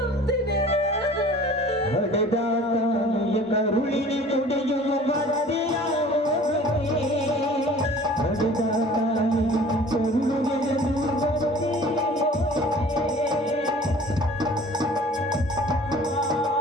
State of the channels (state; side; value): normal; both; correlation 0.47